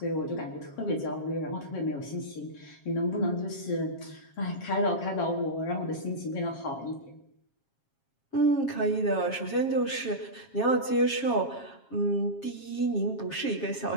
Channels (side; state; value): right; late; 7.4 ms